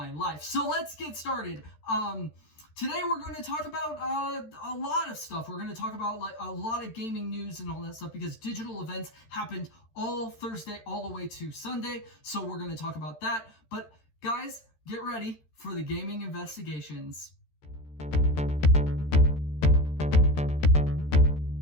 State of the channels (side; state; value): right; late; 13 ms